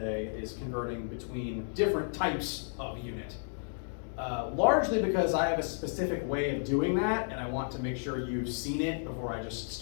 is converting between different types of unit. Largely because I have a specific way of doing that, and I want to make sure you've seen it before I just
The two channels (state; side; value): silent; right; digital silence